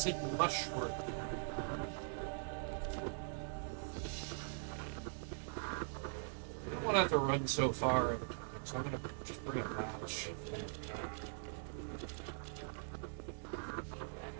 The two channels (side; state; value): left; silent; digital silence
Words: mushroom. I don't have to run so far every time, so I'm gonna just bring a batch.